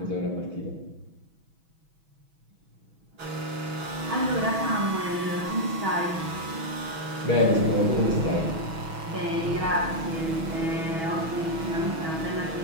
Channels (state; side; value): late; left; 6.2 ms